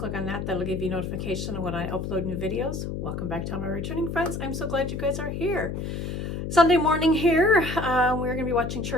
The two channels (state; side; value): noise; left; hum, 4 dB below the sound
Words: on that, that'll give you notification when I upload new videos. Welcome back to all my returning friends. I'm so glad you guys are here. Sunday morning here. We're going to be watching